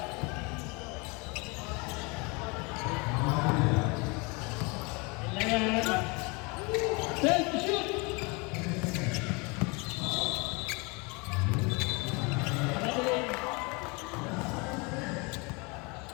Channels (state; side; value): quieter; right; 28.9 dB